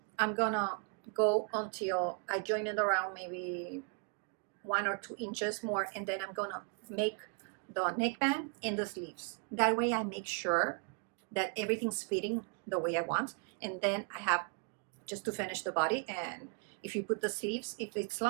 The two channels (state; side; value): quieter; left; 38.8 dB